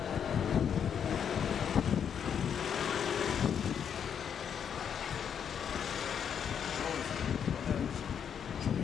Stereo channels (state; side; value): quieter; right; 8.0 dB